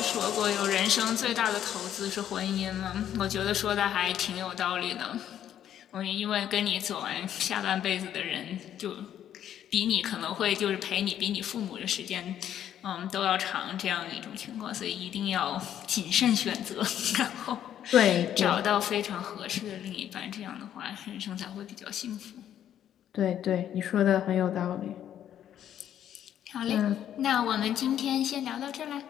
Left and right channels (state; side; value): quieter; right; 10.5 dB